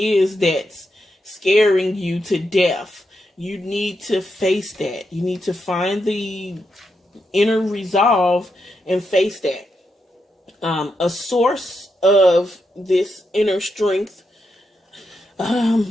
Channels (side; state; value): both; normal; correlation 0.84